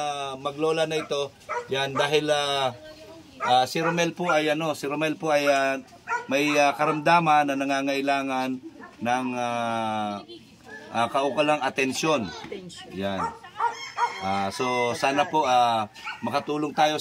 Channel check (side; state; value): both; identical; correlation 1.00